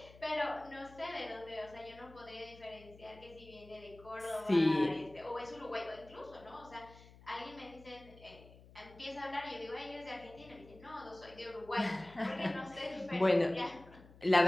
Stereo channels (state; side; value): noise; left; hum, 21 dB below the sound